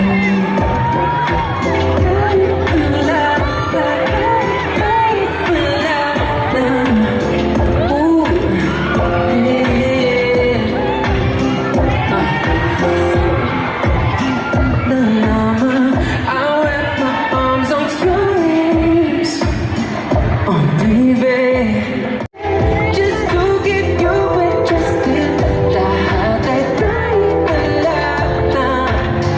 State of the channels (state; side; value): identical; both; correlation 1.00